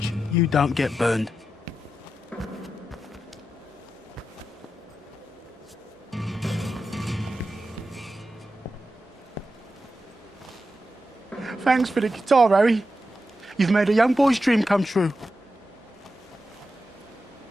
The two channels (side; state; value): both; normal; correlation 0.90